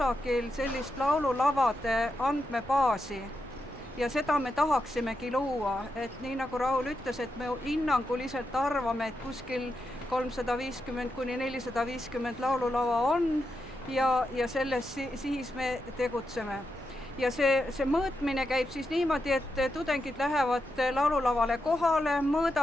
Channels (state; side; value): normal; both; correlation 0.86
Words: sellist laululavade andmebaasi. Ja seda me tahaksimegi luua, et nii nagu Raul ütles, et me hinnanguliselt arvame, et kuskil 350–450 laululava on ja selles siis me tegutseme. Ja see mõõtmine käib siis niimoodi, et tudengid lähevad laululavale kohale,